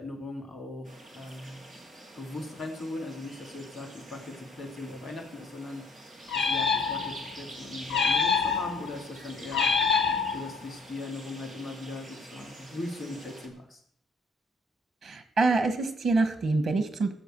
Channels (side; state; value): both; normal; correlation 0.61